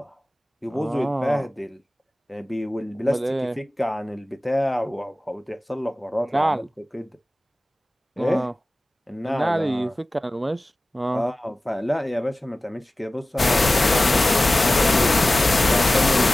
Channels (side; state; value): both; normal; correlation 0.96